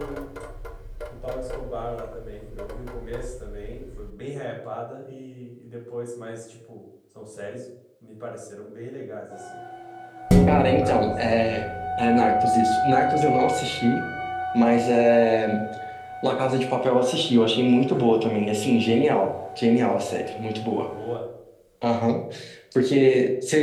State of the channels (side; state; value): both; identical; correlation 1.00